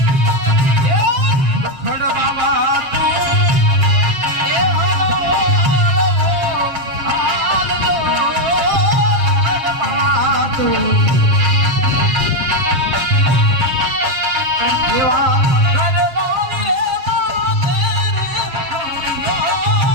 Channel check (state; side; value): late; left; 7.4 ms